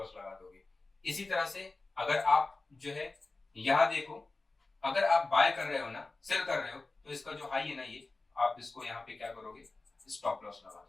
लगा दोगे। इसी तरह से अगर आप जो है यहां देखो, अगर आप बाय कर रहे हो ना, सेल कर रहे हो, तो इसका जो हाई है ना, ये आप इसको यहाँ पे क्या करोगे, स्टॉप लॉस लगा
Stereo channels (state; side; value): quieter; right; 3.4 dB